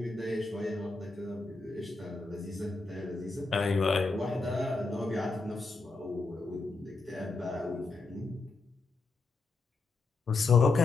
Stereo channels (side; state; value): right; quieter; 3.6 dB